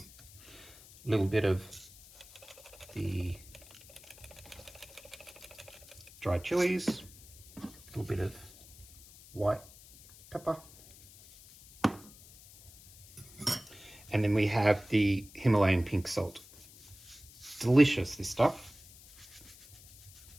little bit of the dried chilies, a little bit of white pepper, and then we have the Himalayan pink salt. Delicious, this stuff.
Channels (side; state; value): left; noise; hiss, 21 dB below the sound